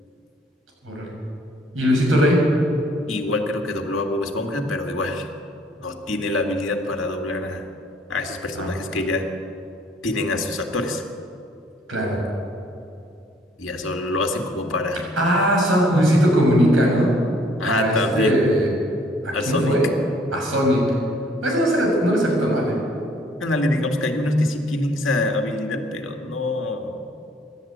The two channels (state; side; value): normal; both; correlation 0.61